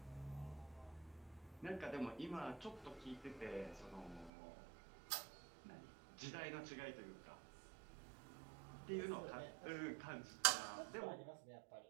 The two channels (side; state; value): left; drops out; at 4.3 s